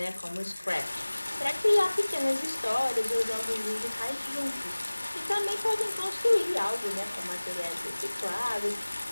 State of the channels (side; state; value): both; inverted; correlation -1.00